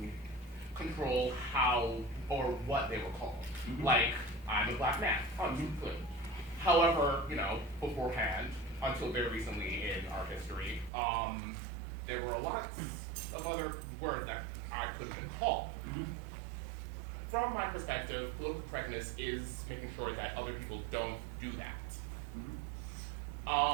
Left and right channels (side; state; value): left; drops out; at 10.9 s